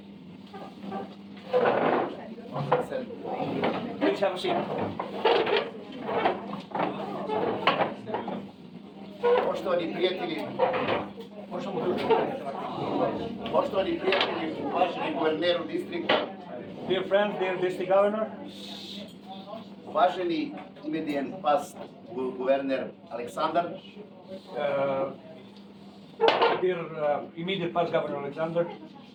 Please have a seat. Poštovani prijatelji, uvaženi guverneru distrikta, dear friends, dear district governor, uvaženi imedijen past guverner Aleksandar, dear immediate past governor Alexander,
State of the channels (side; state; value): both; identical; correlation 1.00